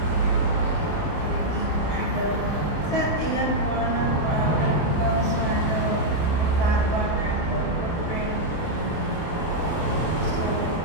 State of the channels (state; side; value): late; right; 29 ms